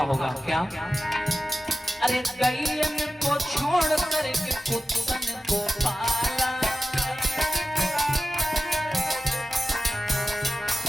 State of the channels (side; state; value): both; normal; correlation 0.94